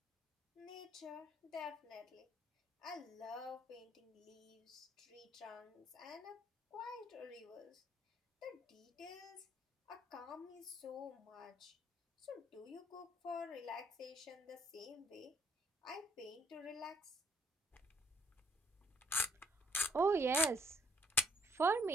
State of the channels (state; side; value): normal; both; correlation 0.66